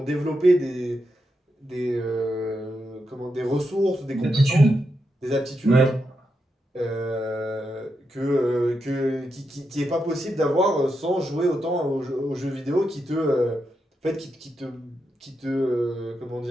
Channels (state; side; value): normal; both; correlation 0.85